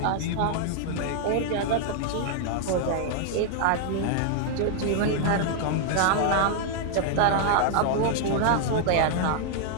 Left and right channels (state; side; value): different; both; correlation 0.00